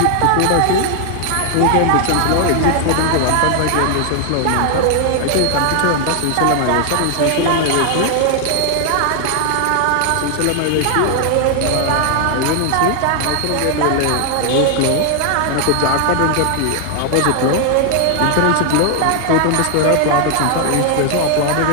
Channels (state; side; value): different; both; correlation 0.00